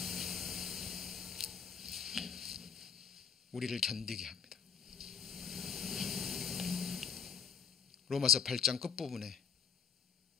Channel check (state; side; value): quieter; right; 6.8 dB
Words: 우리를 견디게 합니다. 로마서 8장 끝부분에